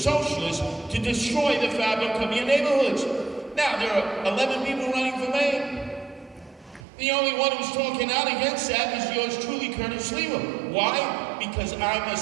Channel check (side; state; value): left; drops out; at 6.9 s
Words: to destroy the fabric of your neighborhoods. Now, there are 11 people running for mayor. The only one who's talking out against that is yours truly, Curtis Lever. Why? Because I'm a